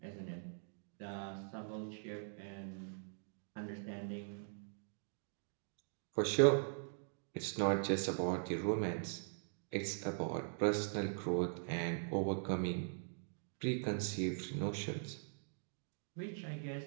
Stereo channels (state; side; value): silent; left; digital silence